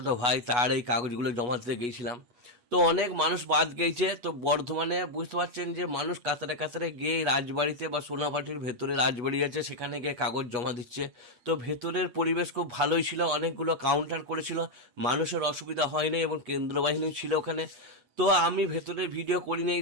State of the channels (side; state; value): left; late; 8.3 ms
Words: ভাই তার এই কাগজগুলো জমা দিতে গেছিলাম। তো অনেক মানুষ বাদ গেছে, তো বর্ধমানে বুঝতে পারছেন যে মানুষ কাতারে কাতারে গিয়ে এই রাজবাড়িতে বা সোনাপাটির ভেতরে রাজবাড়ি আছে সেখানে গিয়ে কাগজ জমা দিচ্ছে। তো ভেতরের পরিবেশ খুব ভালোই ছিল, অনেকগুলো কাউন্টার করেছিল, মানুষের অসুবিধা হয়নি এবং কেন্দ্র বাহিনী ছিল ওখানে। তো আমি ভেতরে ভিডিও করিনি,